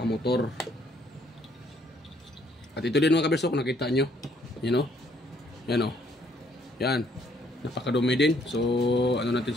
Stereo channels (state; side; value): normal; both; correlation 0.66